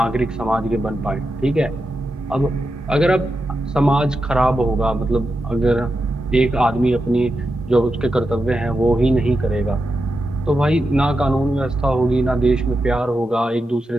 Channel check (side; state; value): both; normal; correlation 0.88